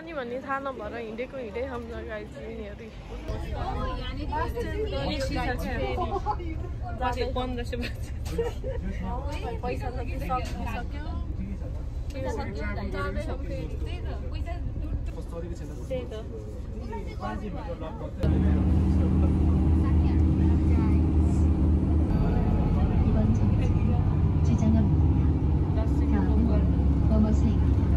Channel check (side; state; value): both; identical; correlation 1.00